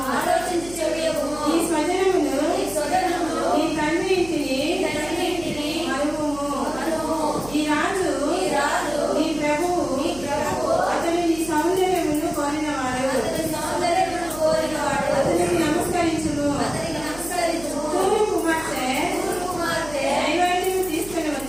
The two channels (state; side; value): noise; right; hum, 16 dB below the sound